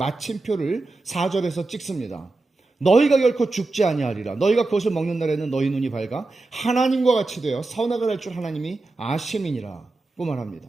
4절에서 찍습니다. 너희가 결코 죽지 아니하리라. 너희가 그것을 먹는 날에는 너희 눈이 밝아 하나님과 같이 되어 선악을 할 줄 하나님이 아심이니라고 말합니다.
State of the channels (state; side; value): quieter; left; 3.3 dB